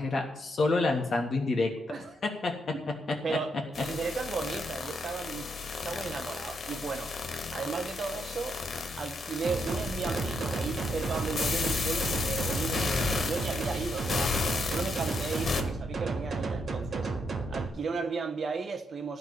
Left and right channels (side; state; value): both; normal; correlation 0.78